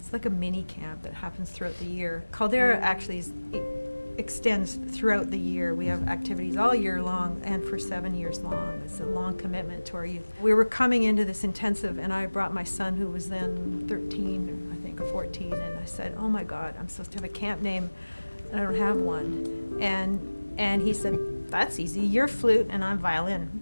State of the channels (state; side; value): inverted; both; correlation -1.00